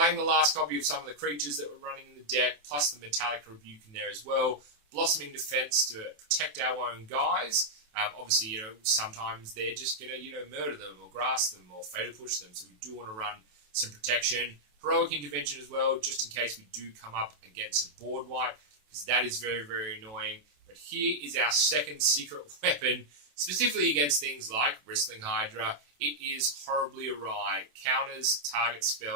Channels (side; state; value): left; late; 27 ms